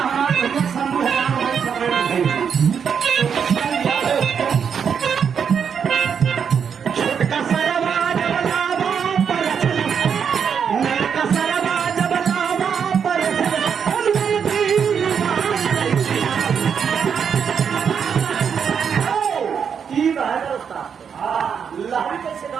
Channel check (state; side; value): quieter; left; 7.1 dB